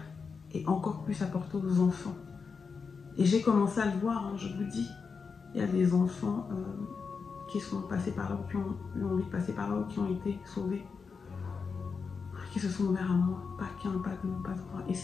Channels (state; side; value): quieter; right; 5.3 dB